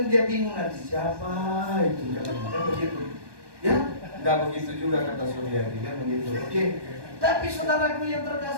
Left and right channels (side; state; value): left; late; 1.2 ms